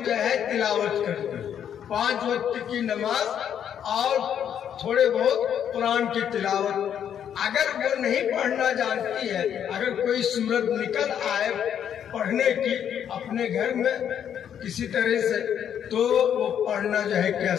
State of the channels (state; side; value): quieter; right; 9.1 dB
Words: جو ہے تلاوت کرتے 5 وقت کی نماز اور تھوڑے بہت قرآن کی تلاوت۔ اگر وہ نہیں پڑھنا جانتی ہے، اگر کوئی صورت نکل آئے پڑھنے کی اپنے گھر میں کسی طرح سے، تو وہ پڑھنا جو ہے کیا